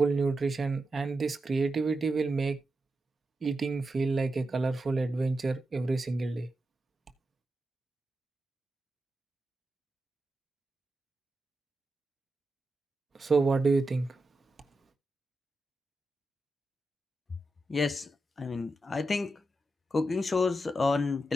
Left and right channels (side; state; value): both; normal; correlation 0.88